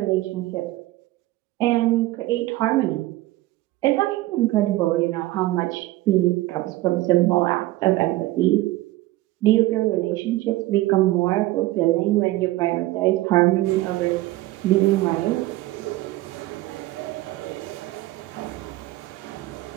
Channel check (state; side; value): quieter; left; 17.7 dB